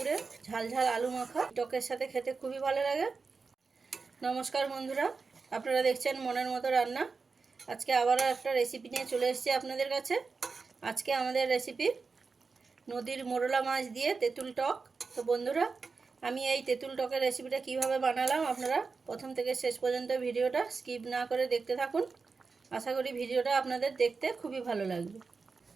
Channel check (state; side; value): quieter; left; 4.6 dB